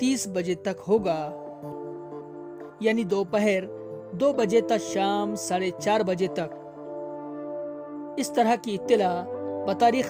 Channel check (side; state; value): both; identical; correlation 1.00